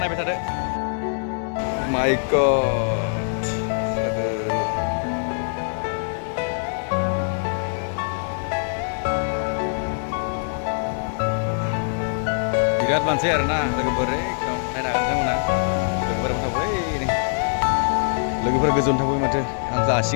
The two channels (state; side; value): silent; right; digital silence